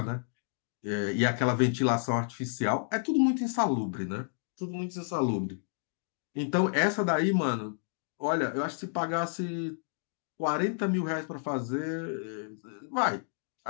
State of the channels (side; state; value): right; silent; digital silence